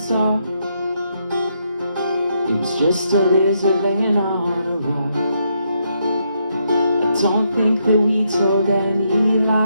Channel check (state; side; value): inverted; both; correlation -0.77